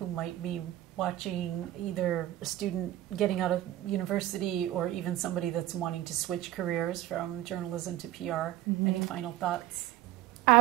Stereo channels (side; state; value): left; quieter; 14.3 dB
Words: might be watching, either a student getting out of university or even somebody that's wanting to switch careers from journalism to PR? Any final thoughts?